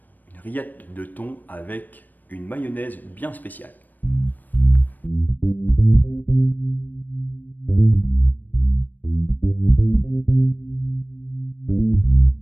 une rillette de thon avec une mayonnaise bien spéciale.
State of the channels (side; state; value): right; late; 0.087 ms